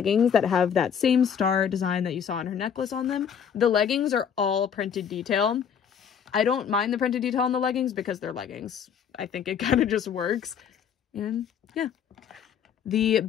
that have that same star design that you saw on her necklace on them. The leggings are all printed detail. I don't mind the printed detail on the leggings because they're leggings. I think it kind of just works. And yeah. The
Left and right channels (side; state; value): right; quieter; 7.8 dB